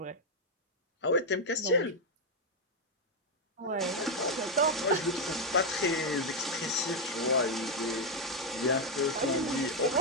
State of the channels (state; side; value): normal; both; correlation 0.02